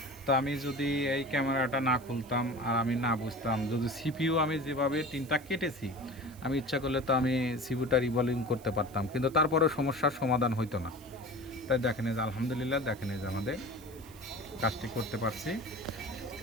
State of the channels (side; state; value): right; noise; hiss, 22 dB below the sound